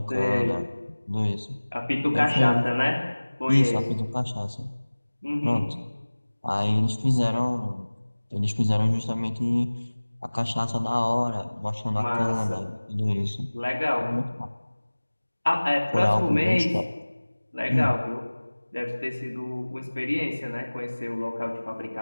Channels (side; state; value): both; inverted; correlation -1.00